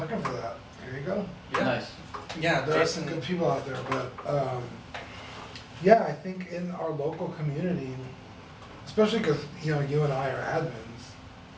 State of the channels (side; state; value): both; identical; correlation 1.00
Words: for that. Here you go. Yeah. Nice. Yeah, There are Jason. some good people out there, but yeah, I think in our local community, especially because you know you and I are admins,